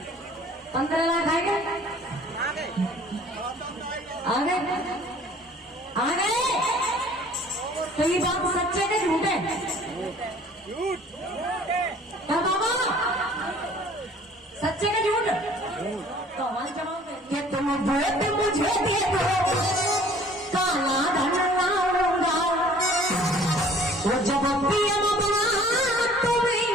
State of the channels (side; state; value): both; normal; correlation 0.52